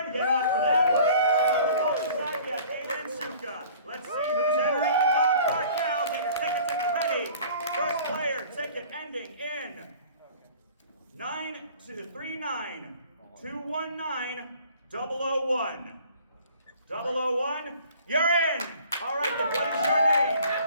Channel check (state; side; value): inverted; both; correlation -0.50